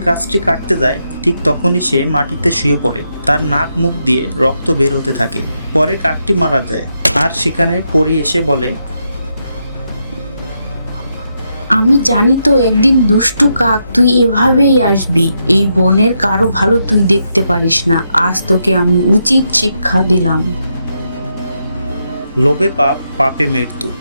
গাছটি কাটতে যায় ঠিক তখনই সে মাটিতে শুয়ে পড়ে। তার নাক মুখ দিয়ে রক্ত বের হতে থাকে। পরে কাকটি মারা যায়, আর সেখানে পরী এসে বলে, আমি জানি তো একদিন দুষ্টু কাক তুই এভাবেই আসবি। এই বনের কারো ভালো তুই দেখতে পারিস না। আজ তোকে আমি উচিত শিক্ষা দিলাম। লোভে পাপ, পাপে মৃত্যু,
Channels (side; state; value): both; inverted; correlation -0.82